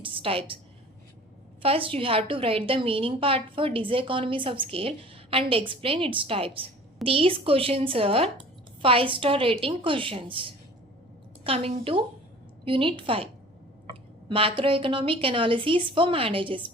types. First, you have to write the meaning part for diseconomies of scale and explain its types. These questions are 5-star rating questions. Coming to Unit 5, Macroeconomic Analysis for Managers,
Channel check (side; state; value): both; normal; correlation 0.46